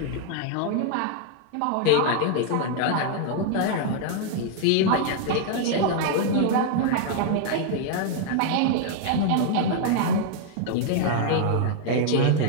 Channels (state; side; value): different; both; correlation 0.00